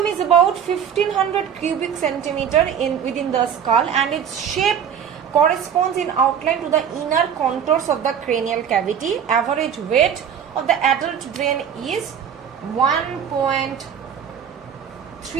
is about 1500 cubic centimeter within the skull, and its shape corresponds in outline to the inner contours of the cranial cavity. Average weight of the adult brain is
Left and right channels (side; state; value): left; quieter; 8.2 dB